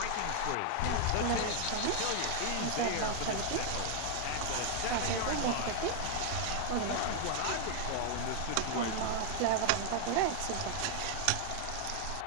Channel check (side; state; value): both; different; correlation 0.00